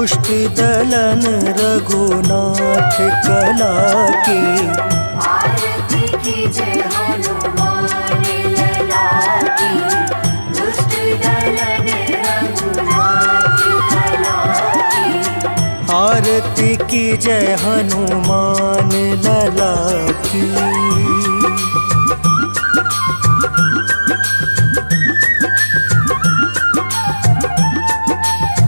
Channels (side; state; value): both; inverted; correlation -1.00